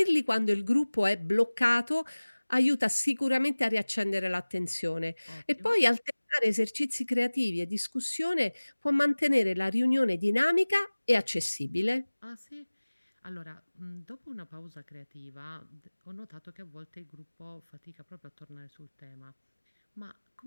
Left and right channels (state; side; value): inverted; both; correlation -1.00